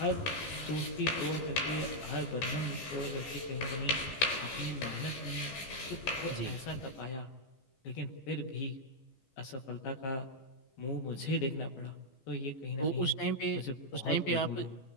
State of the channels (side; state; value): right; late; 14 ms